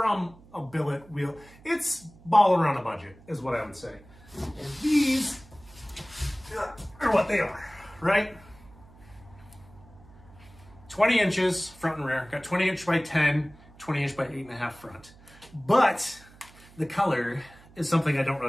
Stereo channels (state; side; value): noise; right; hum, 24 dB below the sound